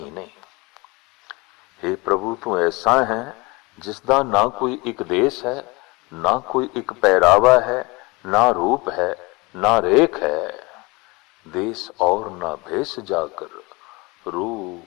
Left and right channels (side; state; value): right; quieter; 25.1 dB